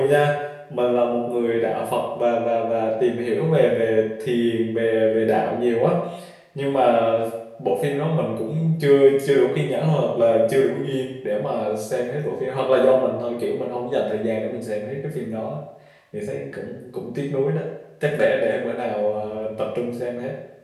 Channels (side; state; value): both; identical; correlation 1.00